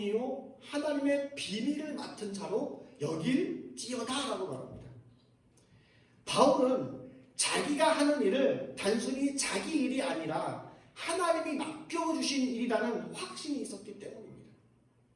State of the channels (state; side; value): identical; both; correlation 1.00